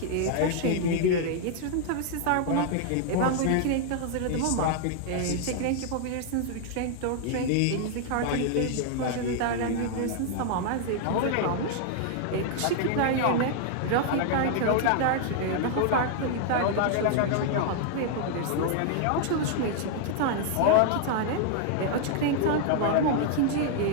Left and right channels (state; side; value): different; both; correlation 0.00